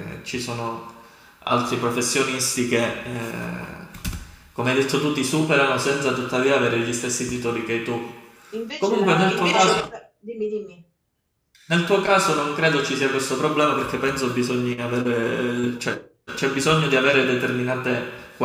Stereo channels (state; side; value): identical; both; correlation 1.00